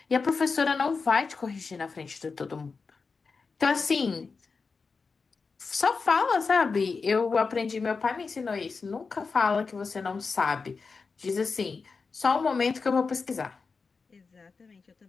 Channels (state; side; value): quieter; right; 4.7 dB